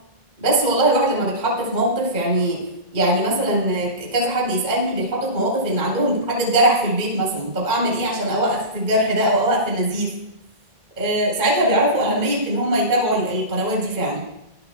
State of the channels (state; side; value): late; left; 2.2 ms